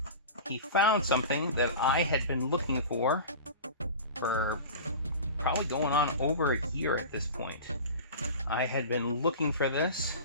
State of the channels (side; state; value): both; inverted; correlation -0.33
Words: He found something that I had been looking for probably going on over a year at this point. I had been looking for this